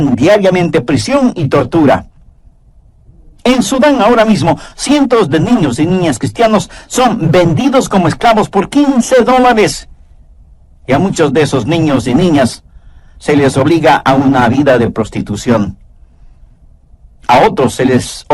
diariamente prisión y tortura. En Sudán ahora mismo, cientos de niños y niñas cristianos son vendidos como esclavos por $15. Y a muchos de esos niños y niñas se les obliga a una vida de prostitución. A otros se les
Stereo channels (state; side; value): identical; both; correlation 1.00